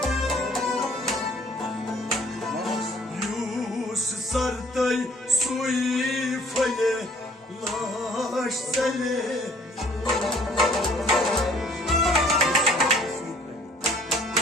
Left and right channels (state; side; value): normal; both; correlation 0.57